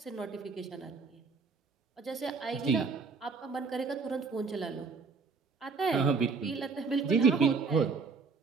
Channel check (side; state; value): left; quieter; 4.7 dB